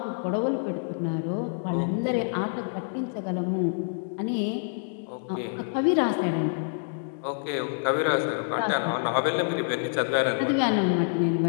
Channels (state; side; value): silent; right; digital silence